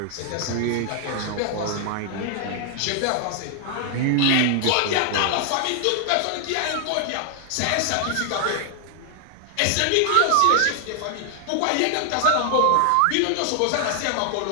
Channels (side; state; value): both; different; correlation 0.00